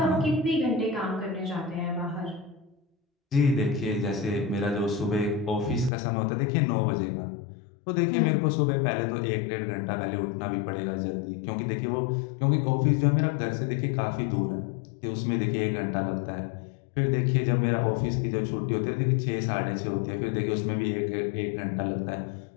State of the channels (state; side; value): drops out; right; at 5.9 s